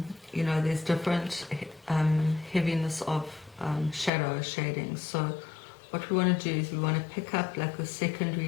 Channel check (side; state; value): right; drops out; at 4.1 s